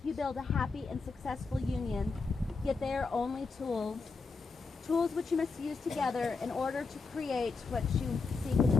you build a happy and successful union, yet they are only tools. Tools which you must use together in order to create what you seek in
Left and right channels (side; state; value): right; quieter; 4.4 dB